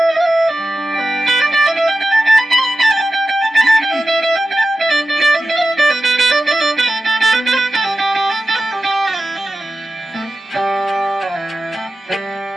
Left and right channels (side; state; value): both; normal; correlation 0.93